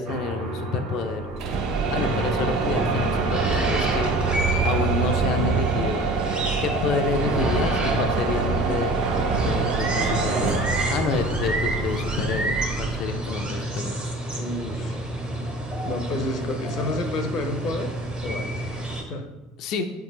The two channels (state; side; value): normal; both; correlation 0.42